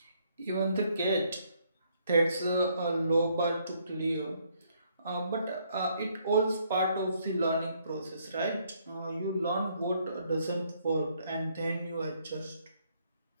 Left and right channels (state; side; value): inverted; both; correlation -0.69